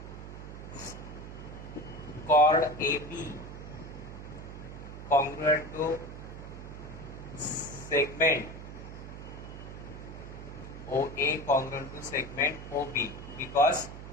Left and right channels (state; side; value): noise; right; hum, 11 dB below the sound